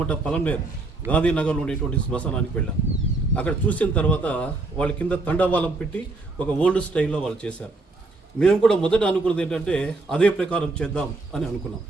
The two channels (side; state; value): left; quieter; 3.3 dB